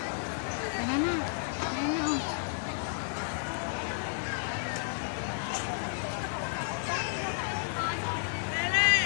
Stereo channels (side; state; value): right; silent; 56 dB below the other